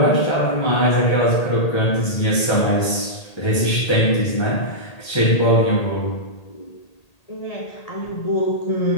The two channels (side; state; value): right; late; 1.8 ms